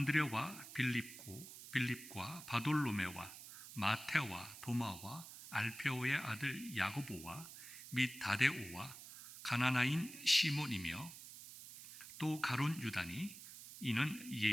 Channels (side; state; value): right; noise; hiss, 14 dB below the sound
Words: 빌립과 바돌로메와 마테와 도마와 알페오의 아들 야고보와 및 다데오와 가나나인 시몬이며 또 가룟 유다니 이는